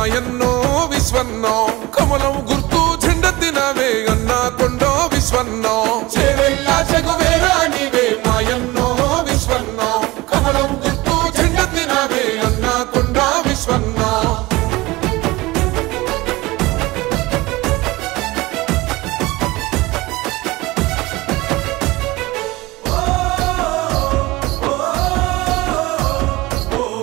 విశ్వన్నో కమలం గుర్తు జెండెత్తినవే అన్నా కొండో విశ్వన్నో చేవెల్ల చెగువేరా నీవే మాయన్నో విశ్వన్నో కమలం గుర్తు జెండెత్తినవే అన్నా కొండో విశ్వన్నో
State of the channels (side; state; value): left; quieter; 20.7 dB